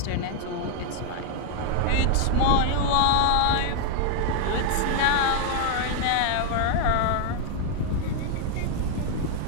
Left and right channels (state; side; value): different; both; correlation 0.00